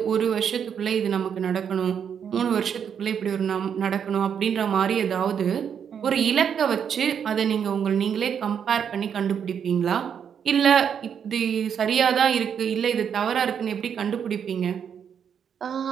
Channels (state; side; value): quieter; left; 7.8 dB